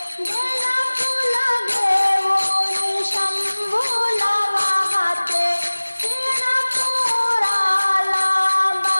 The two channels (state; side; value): inverted; both; correlation -1.00